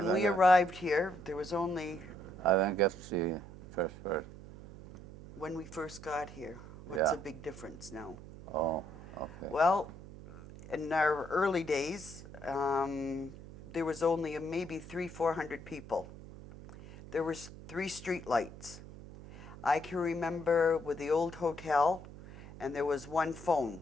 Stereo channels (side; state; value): right; noise; hum, 15 dB below the sound